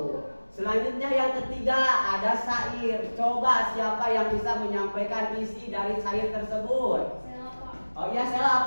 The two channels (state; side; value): inverted; both; correlation -1.00